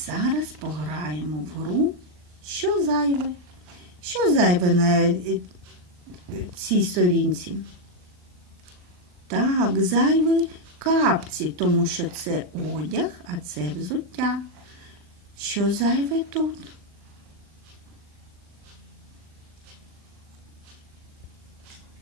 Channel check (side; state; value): left; late; 39 ms